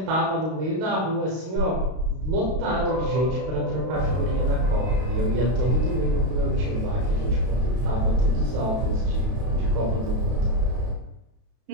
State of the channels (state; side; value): late; left; 32 ms